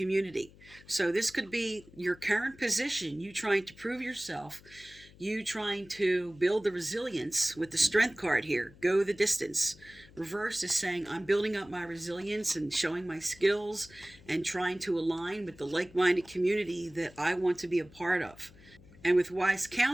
So this could be your current position, you trying to prove yourself, you trying to build the resilience with the Strength card here, go the distance. Reverse is saying, I'm building up my resilience and showing my skills and trying to align with the like-minded community that I want to be a part of. And with Wise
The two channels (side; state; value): left; noise; hum, 23 dB below the sound